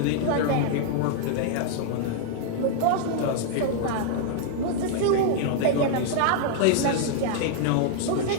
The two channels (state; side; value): different; both; correlation -0.01